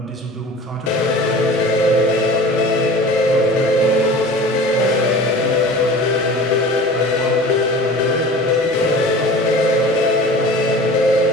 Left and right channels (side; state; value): both; normal; correlation 0.40